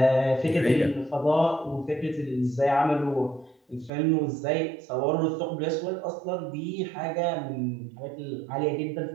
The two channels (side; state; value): left; drops out; at 3.9 s